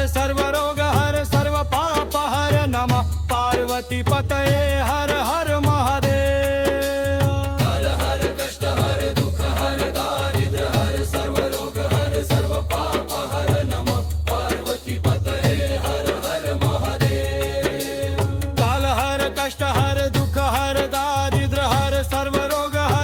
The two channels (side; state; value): both; identical; correlation 1.00